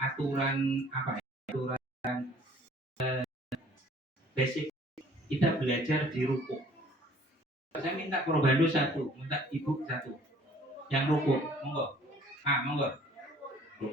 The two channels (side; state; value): both; normal; correlation 0.55